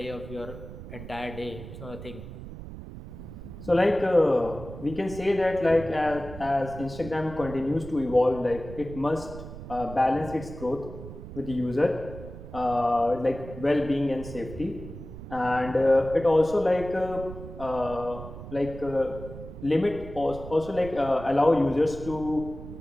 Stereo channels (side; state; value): right; noise; rumble, 12 dB below the sound